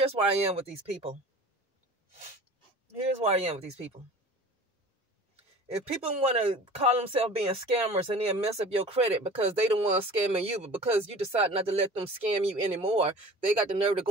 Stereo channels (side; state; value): both; normal; correlation 0.41